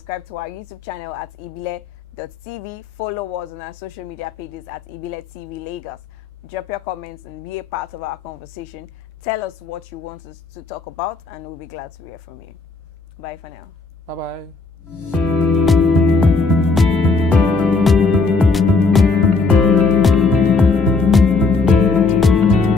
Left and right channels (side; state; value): right; quieter; 4.0 dB